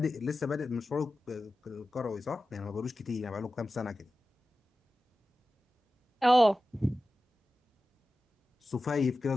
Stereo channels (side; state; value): both; normal; correlation 0.94